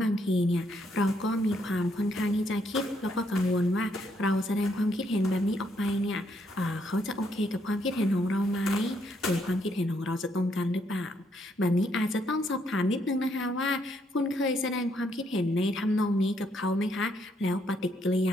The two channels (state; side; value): normal; both; correlation 0.73